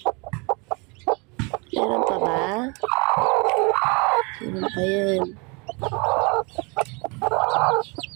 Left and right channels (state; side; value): quieter; left; 30.5 dB